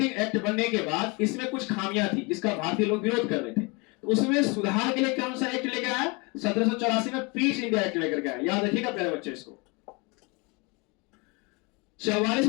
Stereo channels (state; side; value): quieter; right; 28.6 dB